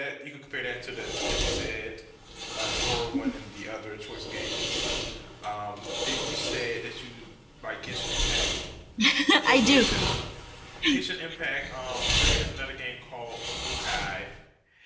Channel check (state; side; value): identical; both; correlation 1.00